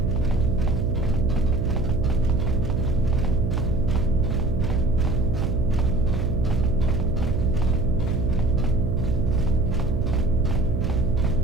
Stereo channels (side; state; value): right; noise; hum, 3 dB below the sound